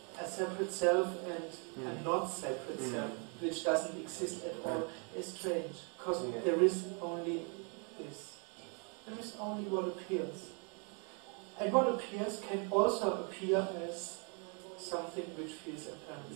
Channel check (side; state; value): left; quieter; 37.3 dB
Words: a separate self and a not separate self, which doesn't exist at all, is strange. Because there is only this. There is only what appears. And what appears can also appear as something which feels apparent